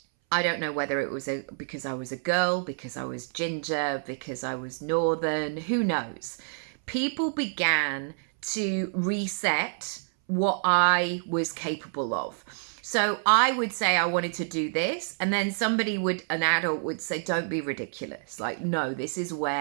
I don't know whether it was because I was a girl, because I was ginger, because I was northern, who knows. People began to reset what I was capable of. So I would say I wanted to do this, and then an adult would say, don't be ridiculous. Like, no, this is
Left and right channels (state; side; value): silent; left; 59 dB below the other